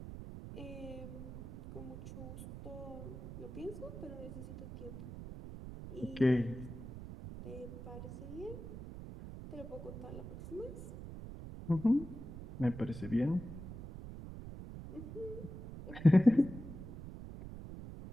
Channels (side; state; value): right; noise; rumble, 10 dB below the sound